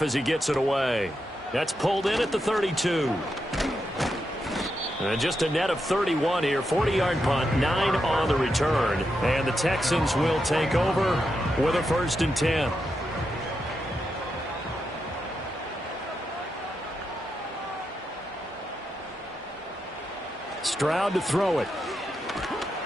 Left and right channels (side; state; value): both; normal; correlation 0.85